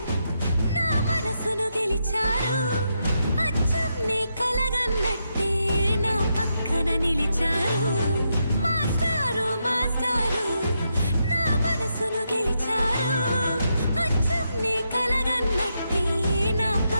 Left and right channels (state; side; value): inverted; both; correlation -0.82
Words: నా మనసును గెలిచారు, అచ్చం నీ కలగన్నట్టే నా పక్కన నిలిచారు. మాస్టారు మాస్టారు నా మనసును గెలిచారు, అచ్చం నీ కలగన్నట్టే నా